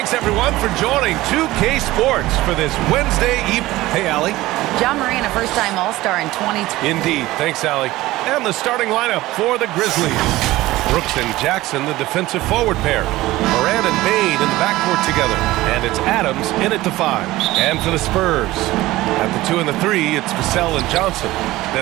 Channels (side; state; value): left; quieter; 17.7 dB